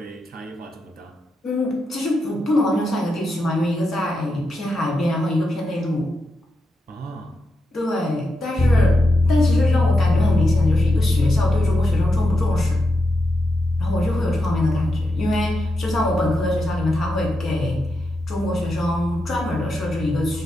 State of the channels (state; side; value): normal; both; correlation 0.86